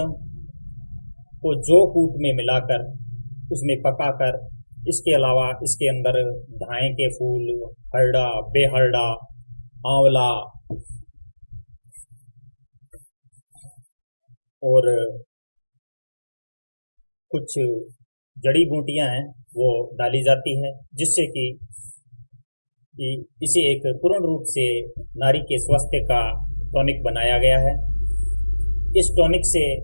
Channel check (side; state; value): both; inverted; correlation -1.00